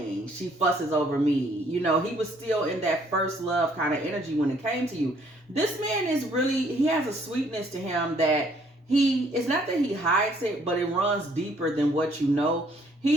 She fusses over me. You know, he was still in that first love kind of energy when it came to you. This man is really, he has a sweetness to him that it's not that he hides it, but it runs deeper than what you know.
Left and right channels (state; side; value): normal; both; correlation 0.64